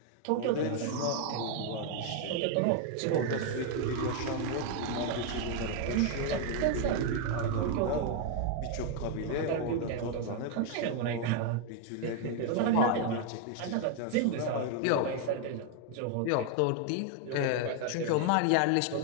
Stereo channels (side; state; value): both; different; correlation 0.01